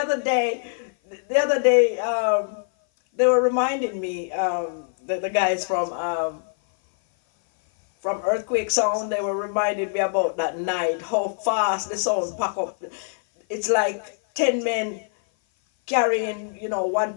day, they were reminding me, the guys from Earthquake Sound, they were reminding me about that night, how fast the sound pack up. It's like 10 men carrying, 1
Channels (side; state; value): right; silent; 56 dB below the other